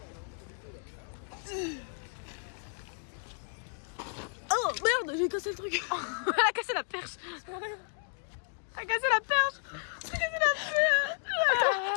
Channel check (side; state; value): right; silent; 56 dB below the other